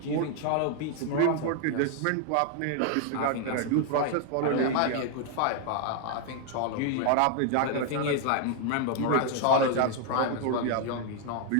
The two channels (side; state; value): both; different; correlation 0.00